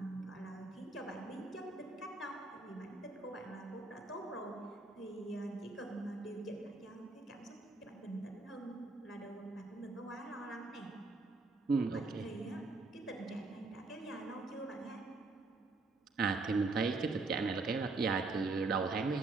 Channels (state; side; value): quieter; left; 3.6 dB